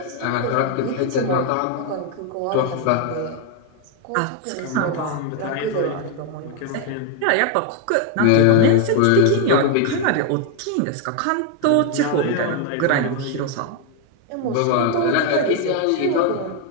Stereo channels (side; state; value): both; different; correlation 0.01